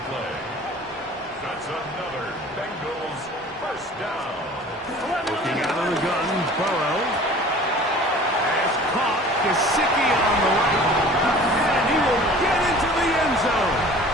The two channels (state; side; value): normal; both; correlation 0.45